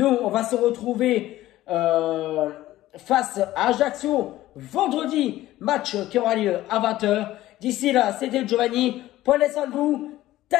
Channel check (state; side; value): quieter; right; 15.4 dB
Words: on va se retrouver face à Ajaccio vendredi, match qui aura lieu à 20h. D'ici là, c'était Giovanni. Prenez soin de vous.